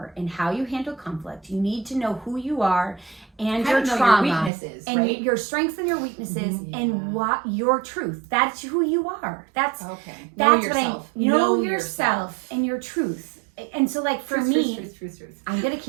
and how you handle conflict. You need to know who you are and How your to know trauma your weaknesses, and right? your strengths and your weaknesses Mhm. and Yeah. what your truth. That's who you are. That's Okay. that's know what I yourself. know yourself and your truth. And so like for Truth, me, truth. I'm going to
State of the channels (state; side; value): drops out; left; at 4.5 s